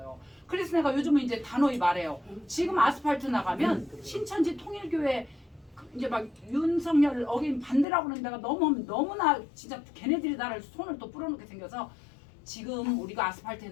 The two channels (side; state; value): right; drops out; at 7.9 s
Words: 그래서 내가 요즘은 이제 단호히 말해요. 지금 아스팔트 나가면 신천지 통일교회 이제 막 윤석열 어긴 반대라고 하는 데가 너무나 진짜 걔네들이 나를 손을 또 뿌려놓게 생겨서, 지금 우리가 아스팔트에